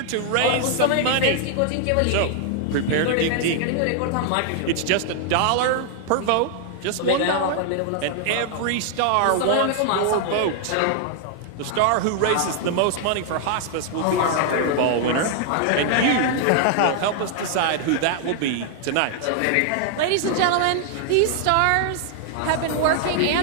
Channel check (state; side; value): different; both; correlation 0.00